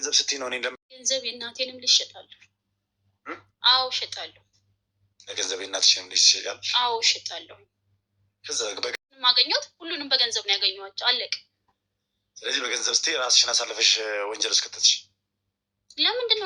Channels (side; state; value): both; identical; correlation 1.00